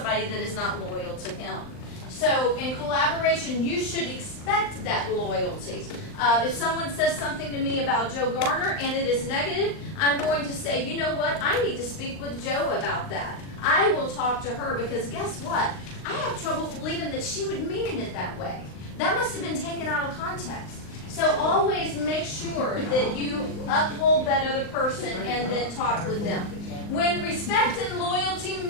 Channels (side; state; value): right; late; 39 ms